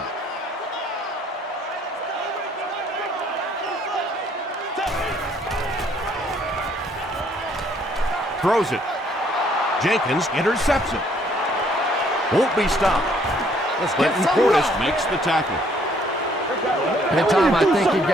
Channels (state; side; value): normal; both; correlation 0.64